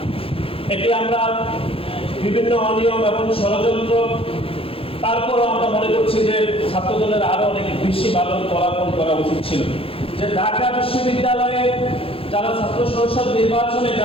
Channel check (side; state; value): right; late; 0.27 ms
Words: এটি আমরা বিভিন্ন অনিয়ম এবং ষড়যন্ত্র, তারপরও আমরা মনে করছি যে ছাত্রদলের আরো অনেক বেশি ভালো ফলাফল করা উচিত ছিল। যে ঢাকা বিশ্ববিদ্যালয়ে যারা ছাত্র সংসদ নির্বাচনে